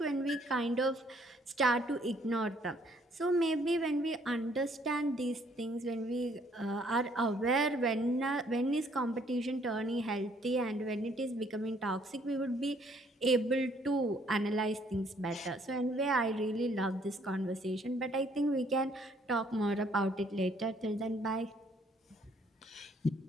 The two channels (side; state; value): both; normal; correlation 0.65